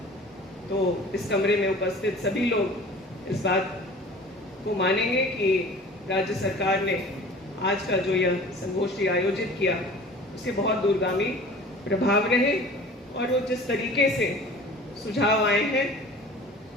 तो इस कमरे में उपस्थित सभी लोग इस बात को मानेंगे कि राज्य सरकार ने आज का जो यह संगोष्ठी आयोजित किया उसके बहुत दूरगामी प्रभाव रहे और वो जिस तरीके से सुझाव आए हैं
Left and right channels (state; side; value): normal; both; correlation 0.43